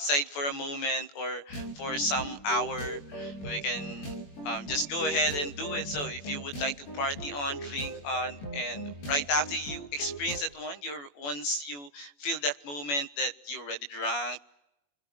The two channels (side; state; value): right; late; 21 ms